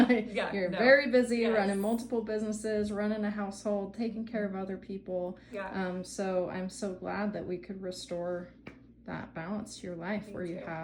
You're very busy running multiple businesses, running a household, taking care of other people. Yeah. So I'm so glad that we could restore that balance to your life where you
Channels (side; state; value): both; identical; correlation 1.00